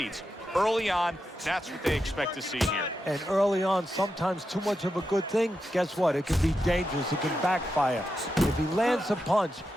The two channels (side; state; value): both; normal; correlation 0.87